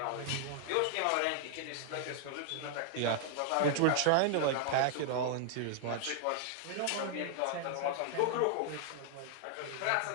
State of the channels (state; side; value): different; both; correlation 0.00